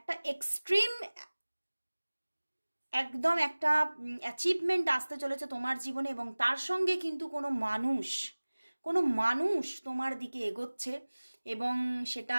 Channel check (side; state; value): both; inverted; correlation -1.00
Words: এক্সট্রিম একদম একটা অ্যাচিভমেন্ট আসতে চলেছে তোমার জীবনে। এবং তার সঙ্গে কিন্তু কোনো মানুষ তোমার দিকে এগোচ্ছে, এবং সেটা